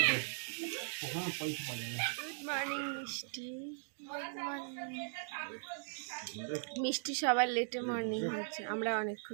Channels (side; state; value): left; silent; digital silence